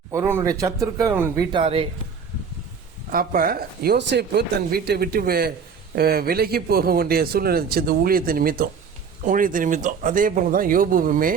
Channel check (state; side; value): quieter; left; 6.1 dB